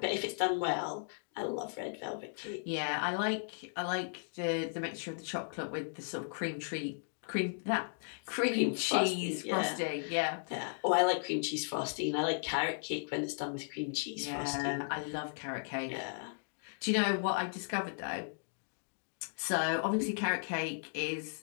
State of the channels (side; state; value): right; silent; digital silence